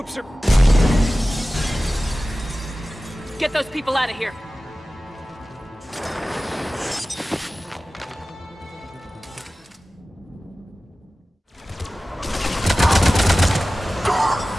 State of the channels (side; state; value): both; normal; correlation 0.96